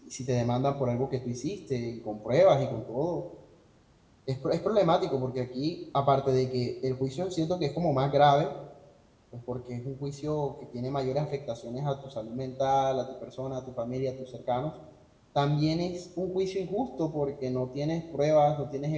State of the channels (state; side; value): identical; both; correlation 1.00